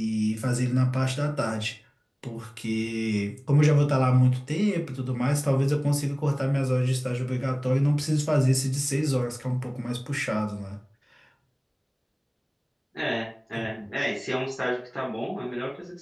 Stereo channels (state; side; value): identical; both; correlation 1.00